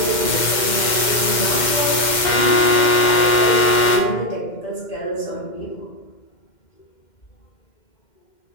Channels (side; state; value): right; late; 2.1 ms